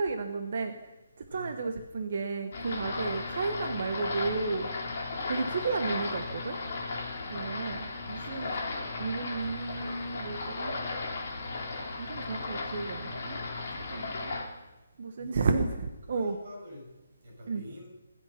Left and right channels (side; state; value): both; inverted; correlation -0.78